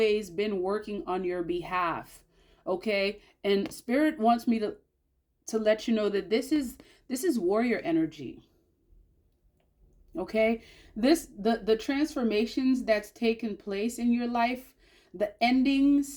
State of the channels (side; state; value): both; identical; correlation 1.00